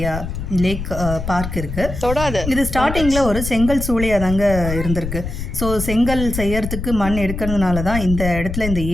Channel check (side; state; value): left; noise; rumble, 6 dB below the sound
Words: பார்க் இருக்குது. இது ஸ்டார்டிங்கில் ஒரு செங்கல் சூளையாக தாங்க இருந்திருக்கு. ஸோ செங்கல் செய்யறதுக்கு மண் எடுக்கிறதுனால தான் இந்த இடத்துல இந்த